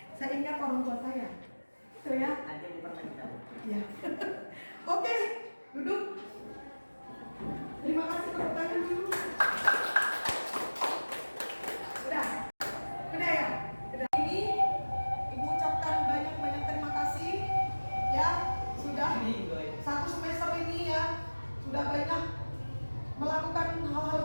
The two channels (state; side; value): inverted; both; correlation -1.00